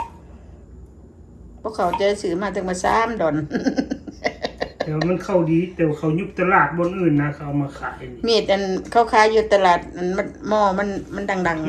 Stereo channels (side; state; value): both; identical; correlation 1.00